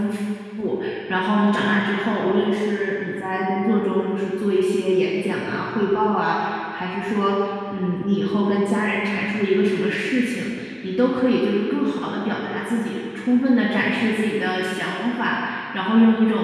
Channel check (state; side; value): identical; both; correlation 1.00